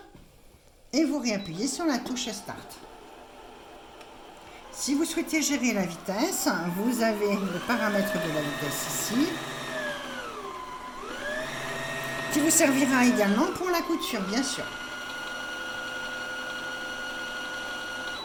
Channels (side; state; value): both; identical; correlation 1.00